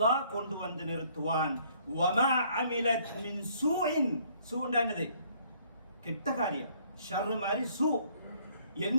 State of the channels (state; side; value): inverted; both; correlation -0.62